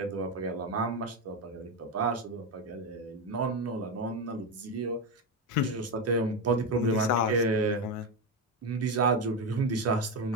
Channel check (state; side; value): normal; both; correlation 0.12